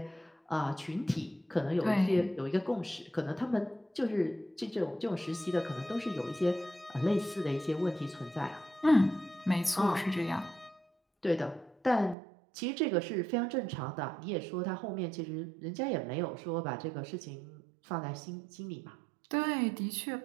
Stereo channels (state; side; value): drops out; left; at 12.2 s